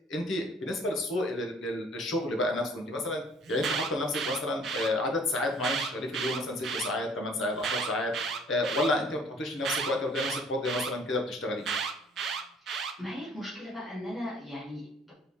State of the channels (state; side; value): normal; both; correlation 0.55